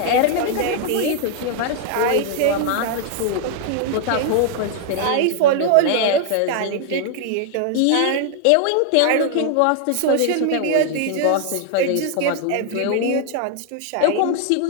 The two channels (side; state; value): both; different; correlation 0.00